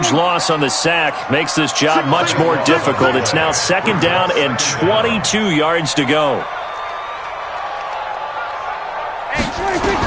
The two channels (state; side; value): identical; both; correlation 1.00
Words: loss on the sack makes this job much more difficult. It's now 2nd down and 22 yards to go.